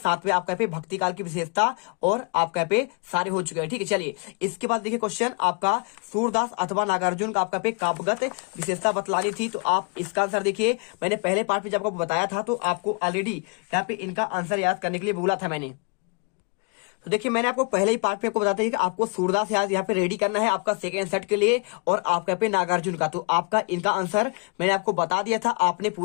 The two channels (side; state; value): right; quieter; 33.0 dB